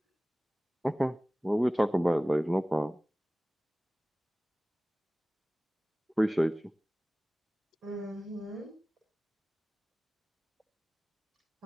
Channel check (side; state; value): both; normal; correlation 0.98